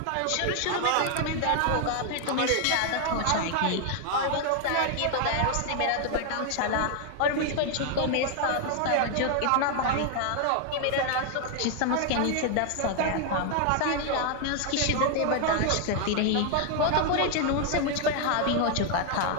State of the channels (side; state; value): both; different; correlation 0.00